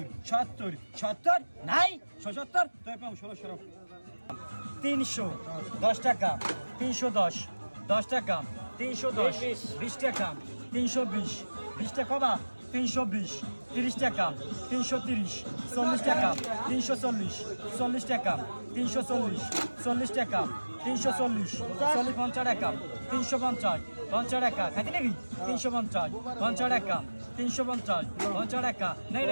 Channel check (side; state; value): both; inverted; correlation -1.00